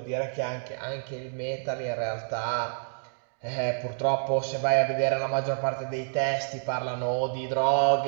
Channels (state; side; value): silent; left; digital silence